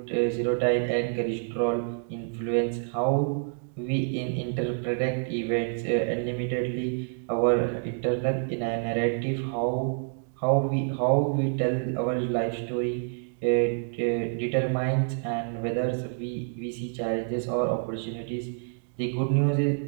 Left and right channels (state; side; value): silent; left; digital silence